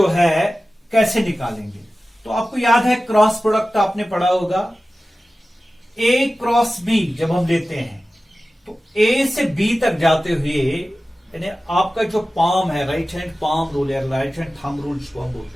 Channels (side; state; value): both; normal; correlation 0.95